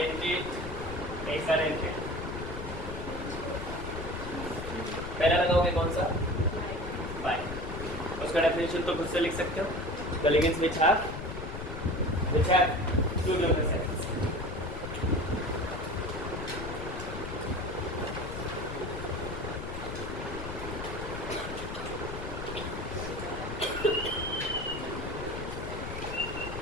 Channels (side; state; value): left; noise; rumble, 7 dB below the sound